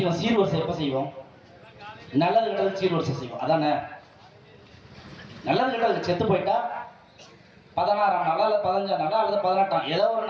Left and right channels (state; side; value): identical; both; correlation 1.00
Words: சீர்வரிசை எப்ப செய்வோம், நல்லது கெட்டது சீர்வரிசை செய்வோம். அதானே நல்லது கெட்டது. செத்து போயிட்டா 16ஆம் நாளா அல்லது 15ஆம் நாளா அல்லது 18ஆம் ஏதோ ஒரு